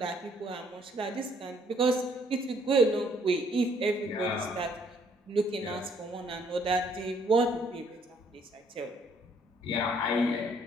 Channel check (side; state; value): both; normal; correlation 0.65